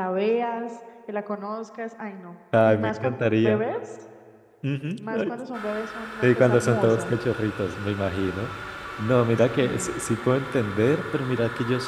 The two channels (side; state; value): both; identical; correlation 1.00